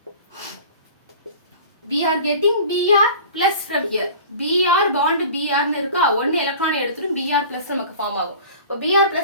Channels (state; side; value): inverted; both; correlation -0.41